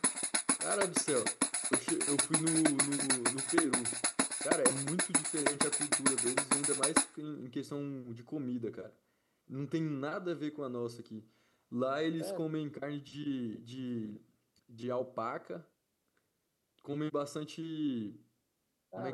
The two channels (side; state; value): both; identical; correlation 1.00